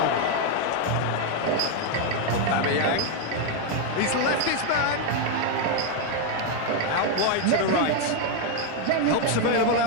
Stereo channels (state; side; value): different; both; correlation 0.01